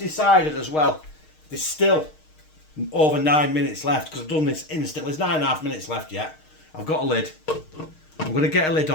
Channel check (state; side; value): late; right; 6.5 ms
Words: as well, there's still over 9 minutes left because I've done this instantly. There's 9.5 minutes left yet. I've got a lid. I'm going to get a lid